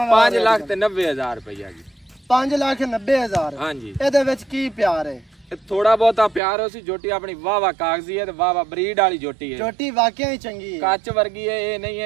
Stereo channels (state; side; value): drops out; left; at 6.4 s